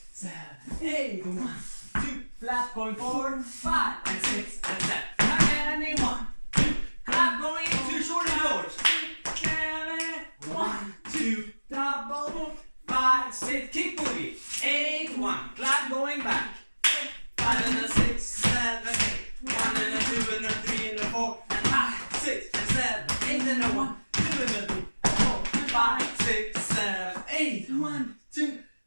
7, 8. 1, 2, flat going forward, 5, and 6, and 7. And 1, 2, clap going into shorty doors. 1, 2, double, 5, 6, kick boogie. 8, 1, clap going back. 5 and a 6, 7, 8. 1 and a 2 and a 3 and a 4 and 5, 6 and 7, 8 and a 1, 2 and a 3 and 4, 5, 6, 7, 8. 1, 2,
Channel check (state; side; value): inverted; both; correlation -1.00